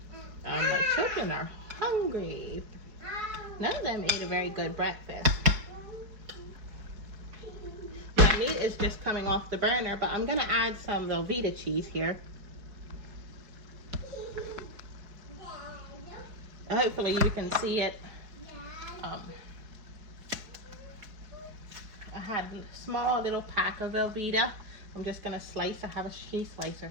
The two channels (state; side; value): late; left; 4.7 ms